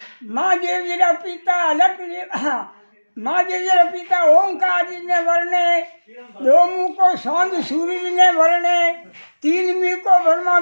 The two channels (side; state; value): both; inverted; correlation -1.00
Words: माँ देवीरा पिता अलग माँ देवीरा पिता ओंकार जी ने वर्णे, दो मुख को सौंद सूर्य ने वर्णे, तीन मुख को ब्रह्मा